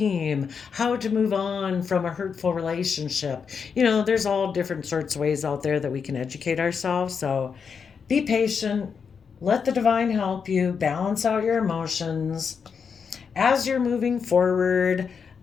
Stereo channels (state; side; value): quieter; right; 6.2 dB